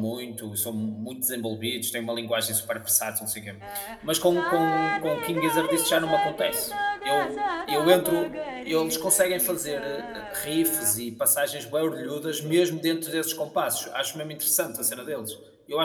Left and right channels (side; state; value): both; identical; correlation 1.00